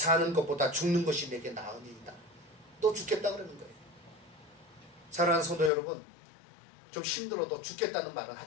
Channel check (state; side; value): drops out; right; at 5.7 s